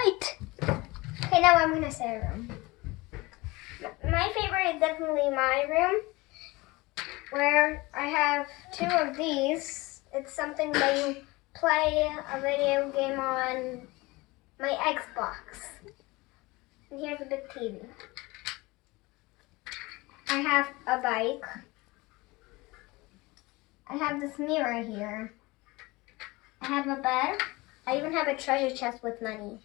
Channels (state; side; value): quieter; right; 22.5 dB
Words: Okay, now I'm gonna say a room. My favorite is definitely my room, where I have 2 of these. It's something that you play a video game on my Xbox. And here's a big TV. I have a bike. I have this mirror here. I have a bed. I even have a treasure chest with money.